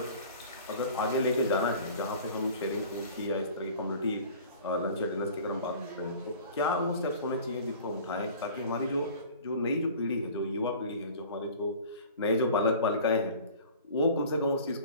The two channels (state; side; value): inverted; both; correlation -0.44